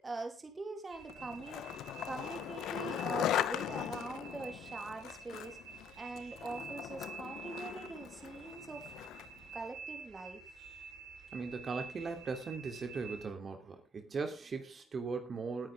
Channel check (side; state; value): both; normal; correlation 0.65